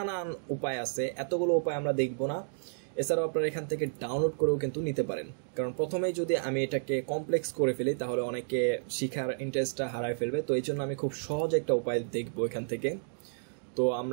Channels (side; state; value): left; silent; digital silence